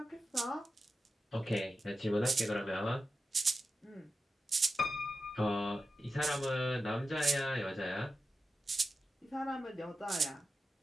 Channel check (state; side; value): normal; both; correlation 0.91